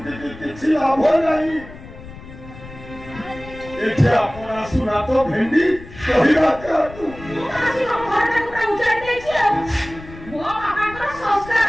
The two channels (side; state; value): left; noise; rumble, 16 dB below the sound